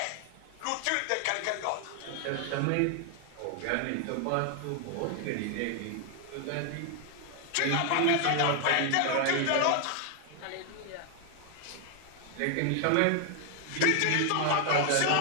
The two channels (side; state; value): both; different; correlation 0.00